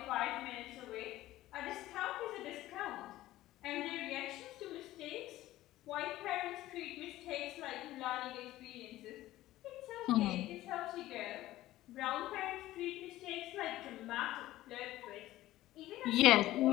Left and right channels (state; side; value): quieter; right; 15.6 dB